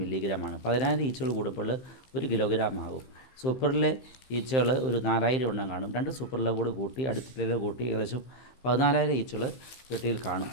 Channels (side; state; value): right; late; 15 ms